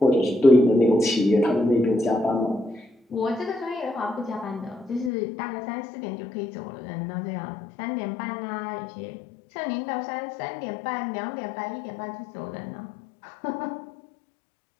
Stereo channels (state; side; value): drops out; right; at 5.1 s